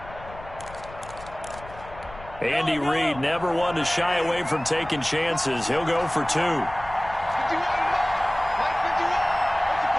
Andy Reid never one to shy away from taking chances. He'll go for 2.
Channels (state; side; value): noise; left; rumble, 17 dB below the sound